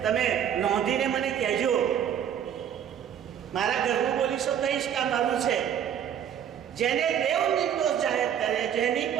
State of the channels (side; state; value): left; quieter; 9.2 dB